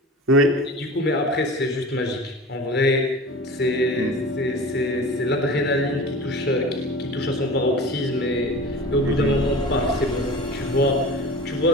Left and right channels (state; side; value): normal; both; correlation 0.35